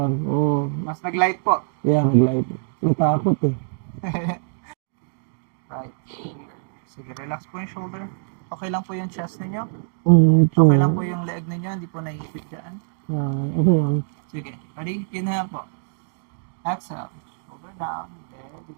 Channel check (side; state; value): left; silent; digital silence